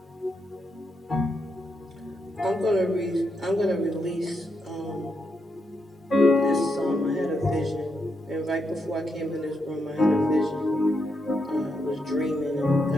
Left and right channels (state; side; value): normal; both; correlation 0.82